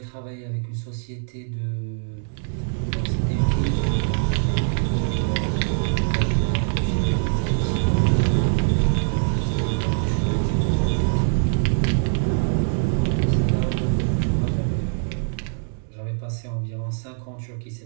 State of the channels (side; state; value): left; silent; digital silence